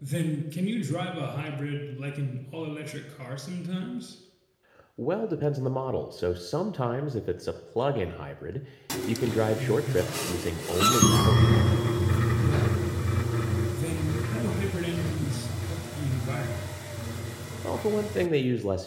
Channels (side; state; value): both; identical; correlation 1.00